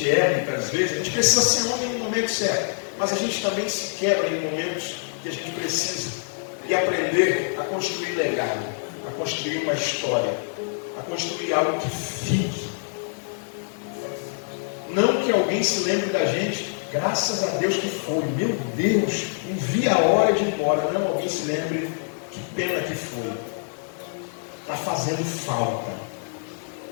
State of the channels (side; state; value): right; silent; digital silence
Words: é, muitas vezes. A gente precisa ser homem no momento certo. Mas a gente também se quebra em momentos que a gente precisa. E aprender a construir legado, a construir uma história, a construir algo que fique. Não que alguém se lembre da gente, graças a Deus que foi, meu Deus, não vi a hora de ir embora. Não, alguém se lembre, que pena que foi. Está fazendo falta.